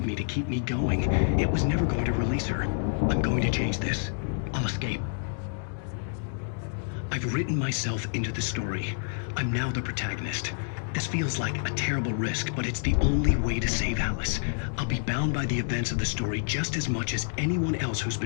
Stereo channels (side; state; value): right; silent; digital silence